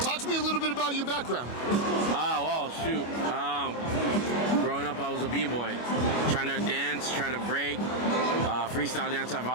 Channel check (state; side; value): late; right; 25 ms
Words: to me a little bit about your background. Well, shoot. Growing up, I was a b-boy, trying to dance, trying to break. Freestyle dance, I've